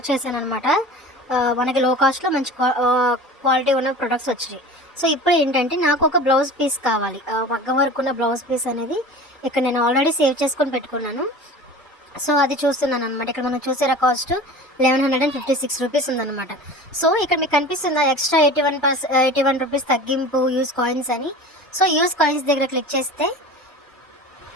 చేశాను అనమాట. మనకి లో కాస్ట్లో మంచి క్వాలిటీ ఉన్న ప్రొడక్ట్స్ వచ్చాయి. సో ఇప్పుడు ఏంటంటే నాకు ఒక బ్లౌజ్ పీస్ కావాలి. మగ్గం వర్క్ ఉన్న బ్లౌజ్ పీస్ అనేది ఇక్కడ నేను ఆల్రెడీ సేవ్ చేసుకొని పెట్టుకున్నాను. సో అది చూస్తున్నాను అనమాట. ఇక్కడ మనం చూసారా కాస్ట్ 1156 రూపీస్ ఉందన్నమాట. సో ఇక్కడ మీకు కనిపిస్తుందా ఎక్స్ట్రా 81 రూపీస్ తగ్గింపు యూజ్ కాయిన్స్ అని. సో యూజ్ కాయిన్స్ దగ్గర క్లిక్ చేస్తే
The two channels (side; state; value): both; normal; correlation 0.37